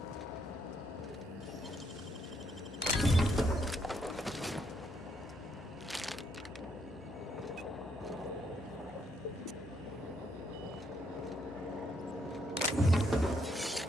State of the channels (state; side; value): normal; both; correlation 0.74